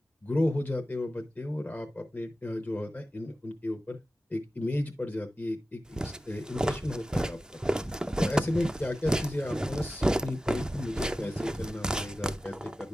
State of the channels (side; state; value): both; normal; correlation 0.94